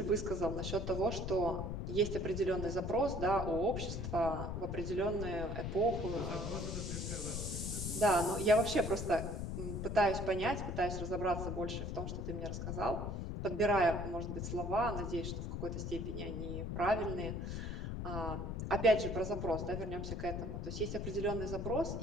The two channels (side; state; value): left; noise; rumble, 4 dB below the sound